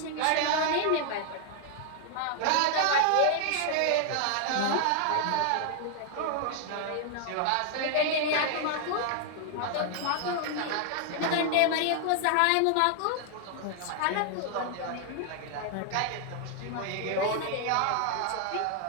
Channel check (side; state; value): both; different; correlation 0.00